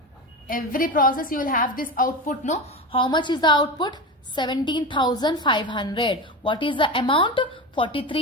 Every process you will have this output, no? How much is the output? 17,500. What is the amount?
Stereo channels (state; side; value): normal; both; correlation 0.23